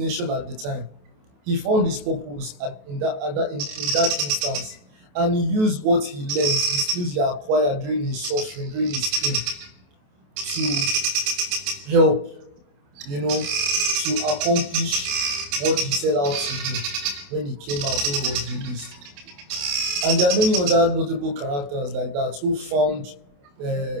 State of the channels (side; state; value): left; late; 28 ms